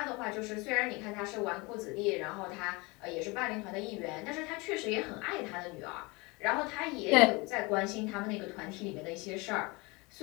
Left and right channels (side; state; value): right; quieter; 25.9 dB